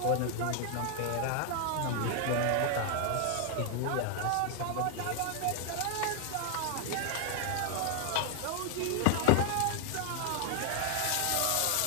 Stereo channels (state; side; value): different; both; correlation 0.00